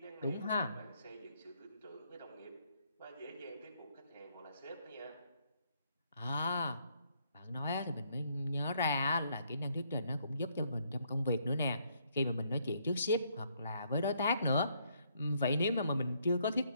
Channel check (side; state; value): both; inverted; correlation -0.71